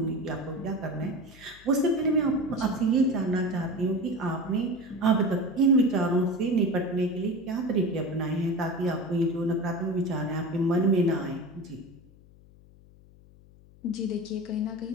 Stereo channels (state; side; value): noise; left; hum, 25 dB below the sound